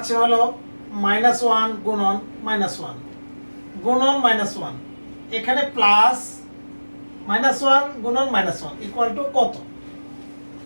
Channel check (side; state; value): both; inverted; correlation -1.00